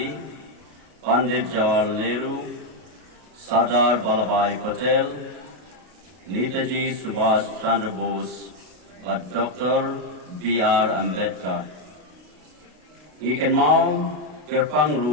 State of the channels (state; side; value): late; left; 33 ms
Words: Pandit Jawaharlal Nehru Sardar Vallabhbhai Patel Netaji Subhash Chandra Bose bat Dr. B.R. Ambedkar ikan mau kerpang